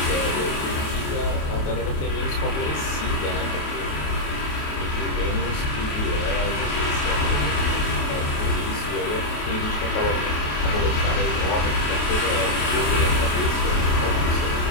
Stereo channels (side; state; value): right; late; 28 ms